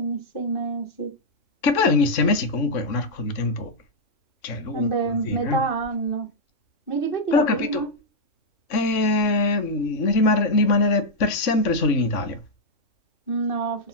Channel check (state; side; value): late; right; 3.5 ms